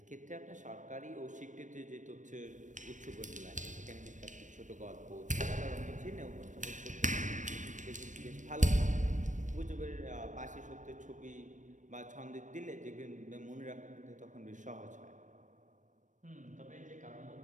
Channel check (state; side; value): late; left; 0.37 ms